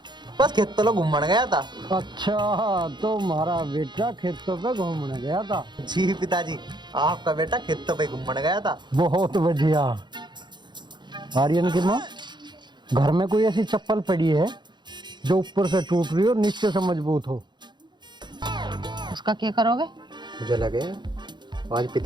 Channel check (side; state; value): left; late; 0.22 ms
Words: बस खेत तो घूमने गया था। अच्छा, तो हमारा बेटा खेतों पे घूमने गया था? जी पिताजी, आपका बेटा खेतों पे घूमने गया था। बहुत बढ़िया। आर्यन की माँ, घर में कोई ऐसी चप्पल पड़ी है जो ऊपर से टूट रही हो और नीचे से मजबूत हो? उसका क्या करोगे? मुझे लगे आज